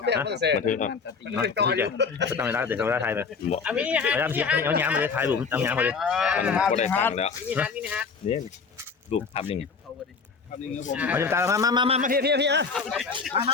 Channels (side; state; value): right; quieter; 5.3 dB